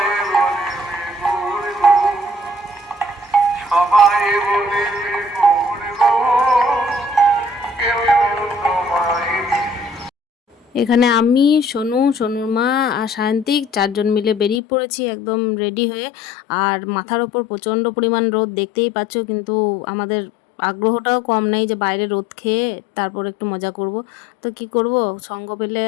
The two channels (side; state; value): right; drops out; at 14.6 s